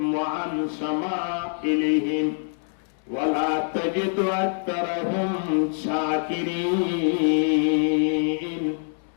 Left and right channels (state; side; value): silent; right; digital silence